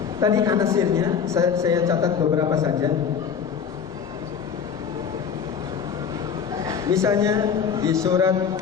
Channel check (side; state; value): right; quieter; 7.0 dB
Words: tadi anasirnya saya catat beberapa saja. Misalnya di surat